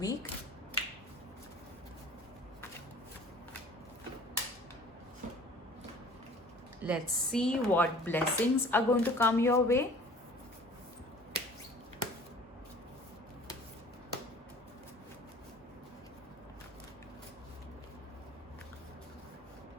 Let's see what blessings are going to come your way.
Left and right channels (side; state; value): both; normal; correlation 0.48